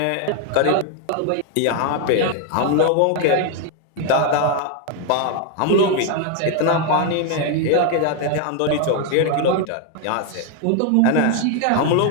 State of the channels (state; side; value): different; both; correlation 0.01